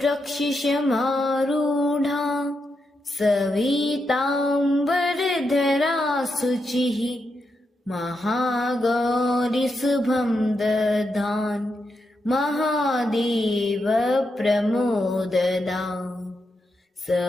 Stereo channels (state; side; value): normal; both; correlation 0.84